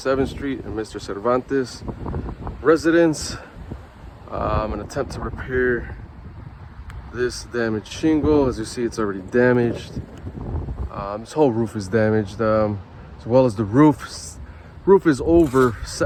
Street in Mr. Cervantes' residence. I'm gonna attempt to repair this damaged shingle. As you see, it's already damaged. This whole roof is damaged, as well as the roof. Roof is over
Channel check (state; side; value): identical; both; correlation 1.00